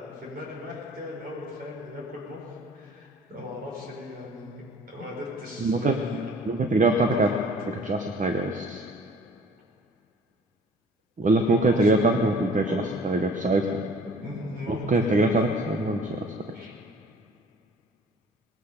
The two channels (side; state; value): both; normal; correlation 0.50